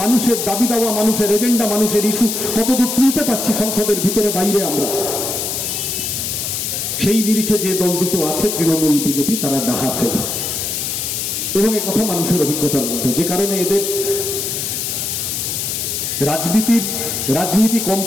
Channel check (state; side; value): noise; left; hiss, 2 dB below the sound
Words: মানুষের দাবি দাওয়া, মানুষের এজেন্ডা, মানুষের ইস্যু কতদূর তুলতে পারছি সংসদের ভিতরে বাইরে আমরা। সেই নিরিখে যে দল দুটো আছে, তৃণমূল, বিজেপি, তারা ডাহা ফেল। এবং এ কথা মানুষের অভিজ্ঞতার মধ্যে, যে কারণে এদের রাজনীতি কম